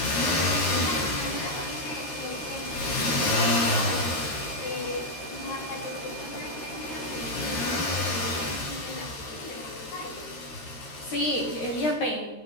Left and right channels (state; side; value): late; right; 13 ms